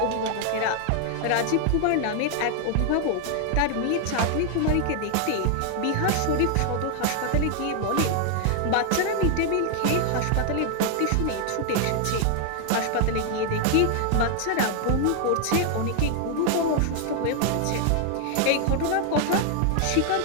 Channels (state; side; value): different; both; correlation 0.00